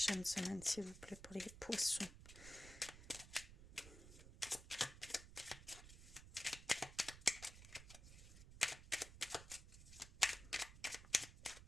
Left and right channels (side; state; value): right; noise; rumble, 14 dB below the sound